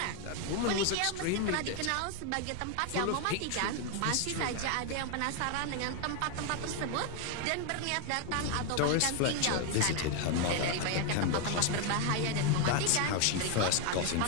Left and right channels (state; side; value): different; both; correlation 0.01